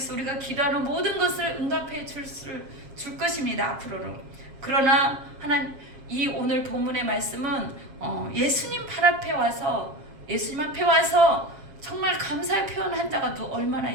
우리가 기도하는 모든 것을 응답해 줄 것입니다. 앞으로로. 그러나 이 오늘 본문의 말씀은 예수님 발 앞에 와서, 예수님 앞에 와서 정말 감사의 표현한 자가 얼마나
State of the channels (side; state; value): left; late; 7.5 ms